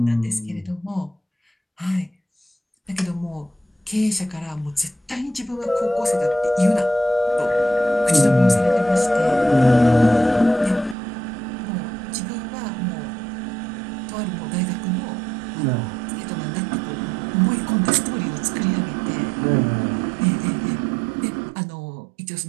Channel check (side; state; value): left; drops out; at 11.0 s